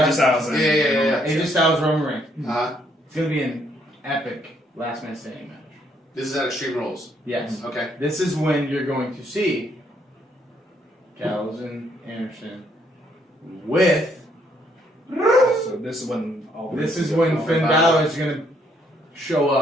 Styles. Yeah. AJ Styles, Roman Reigns. It's going to be an epic last man standing match. This is at Extreme Rules. Yes. Okay. This is when you're going to see Gallows and Anderson with. So this is when Finn Balor is going to show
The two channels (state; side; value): normal; both; correlation 0.70